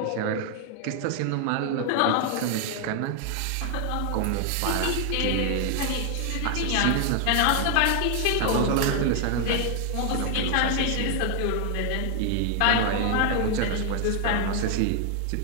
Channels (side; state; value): both; different; correlation 0.00